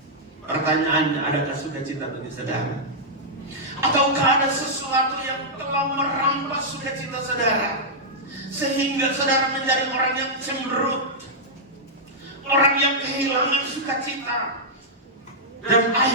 Pertanyaannya, adakah sukacita bagi saudara? Ataukah ada sesuatu yang telah merampas sukacita saudara, sehingga saudara menjadi orang yang cemberut, orang yang kehilangan sukacita, dan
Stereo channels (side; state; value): both; normal; correlation -0.08